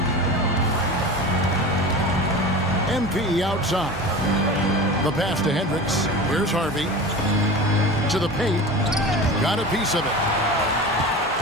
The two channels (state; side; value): normal; both; correlation 0.32